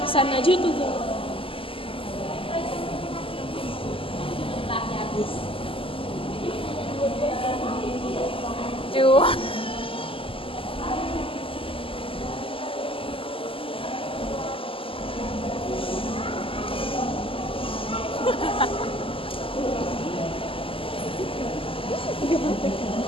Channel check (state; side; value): late; right; 0.26 ms